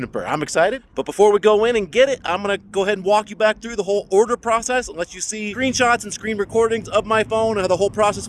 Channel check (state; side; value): identical; both; correlation 1.00